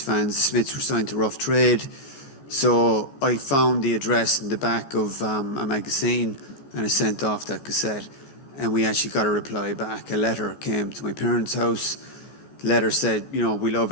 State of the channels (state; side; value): late; right; 15 ms